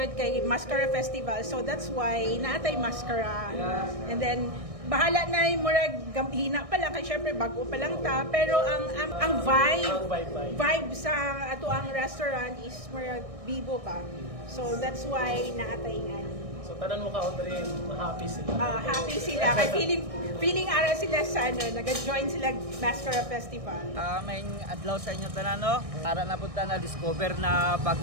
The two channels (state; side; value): late; left; 1.6 ms